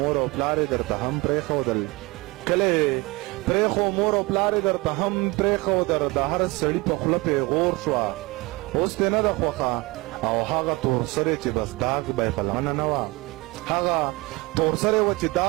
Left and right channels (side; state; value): left; quieter; 24.0 dB